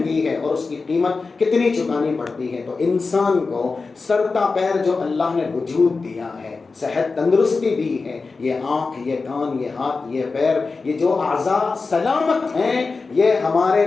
ہے اور اس کی قیمت کتنی چکانی پڑتی ہے. تو انسان کو سر تا پیر جو اللہ نے وجود دیا ہے، صحت تندرستی دی ہے، یہ آنکھ، یہ کان، یہ ہاتھ، یہ پیر، یہ جو اعضاء سلامت ہیں، یہ ہمارے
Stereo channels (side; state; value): right; quieter; 4.2 dB